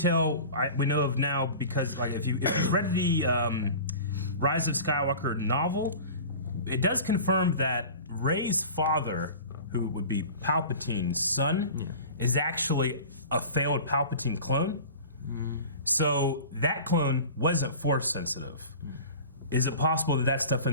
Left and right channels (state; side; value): inverted; both; correlation -0.38